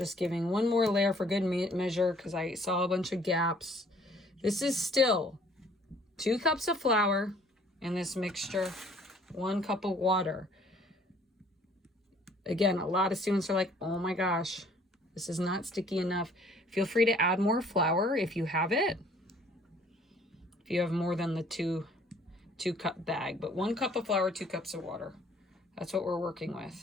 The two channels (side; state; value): both; normal; correlation 0.58